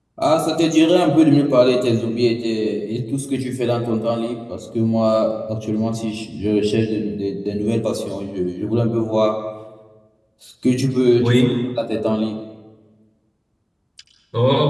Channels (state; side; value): identical; both; correlation 1.00